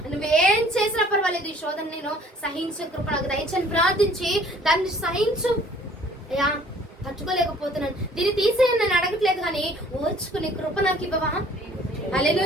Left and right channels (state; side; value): normal; both; correlation 0.55